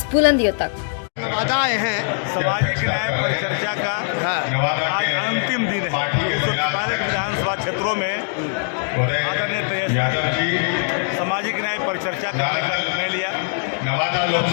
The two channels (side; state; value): right; silent; 65 dB below the other